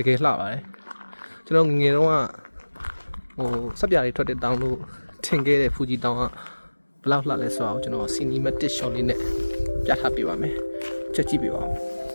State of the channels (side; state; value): both; inverted; correlation -1.00